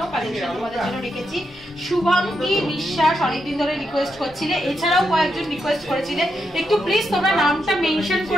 কালেকশন তোমাদের জন্য রেখেছি। শুভাঙ্গী বিশ্বাস অনেকদিন ধরে রিকোয়েস্ট করছিলে, এছাড়াও কয়েকজন রিকোয়েস্ট করেছিলে একটু প্লিজ তোমরা নামটা মেনশন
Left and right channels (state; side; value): normal; both; correlation 0.83